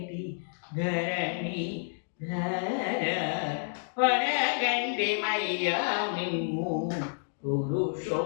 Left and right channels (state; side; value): silent; right; digital silence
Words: ధరణి ధర వరగండి మయ్యా మిమ్ము